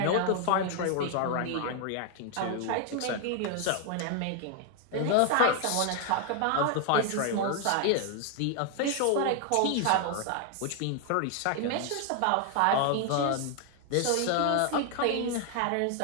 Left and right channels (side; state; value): both; different; correlation 0.00